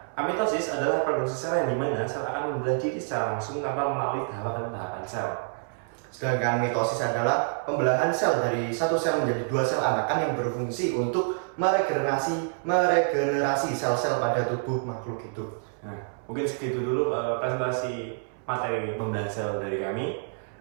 amitosis adalah produksi sel yang dimana sel akan membelah diri secara langsung tanpa melalui tahapan-tahapan sel. Sedangkan mitosis adalah pembelahan sel dari satu sel menjadi dua sel anakan yang berfungsi untuk meregenerasi sel-sel pada tubuh makhluk hidup. Nah, mungkin segitu dulu presentasi materi pembelahan sel dari kami.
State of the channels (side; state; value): left; silent; 60 dB below the other